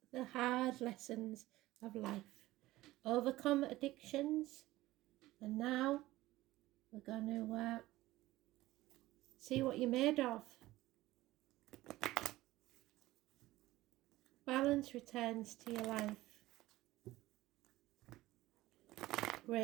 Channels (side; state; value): left; quieter; 17.3 dB